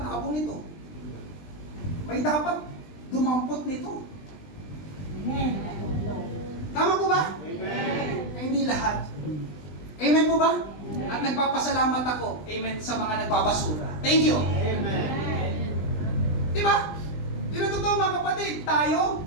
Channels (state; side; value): late; right; 20 ms